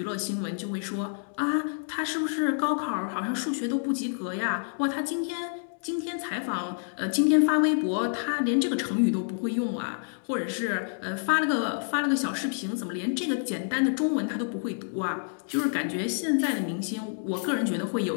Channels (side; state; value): right; silent; digital silence